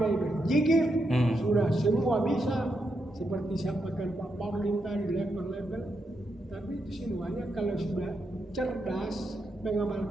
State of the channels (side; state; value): both; normal; correlation 0.83